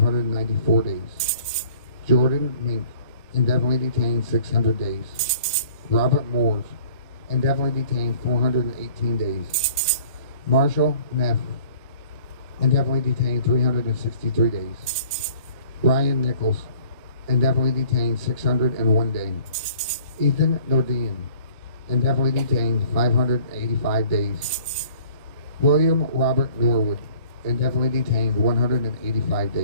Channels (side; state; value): both; inverted; correlation -0.52